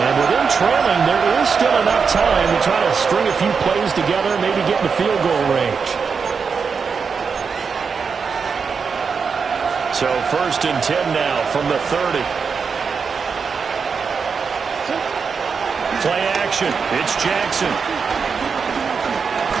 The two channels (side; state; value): left; quieter; 5.6 dB